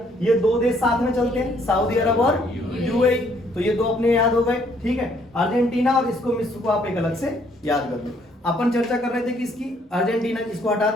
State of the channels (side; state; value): both; normal; correlation 0.66